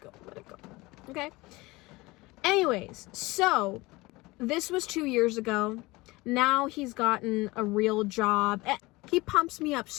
Let it go. Okay? Anyways, so this was 2 years ago. Now he's gotten a real job. He pumps me up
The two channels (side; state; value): right; quieter; 21.9 dB